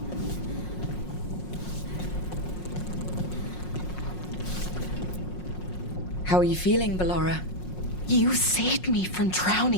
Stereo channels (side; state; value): right; late; 5.5 ms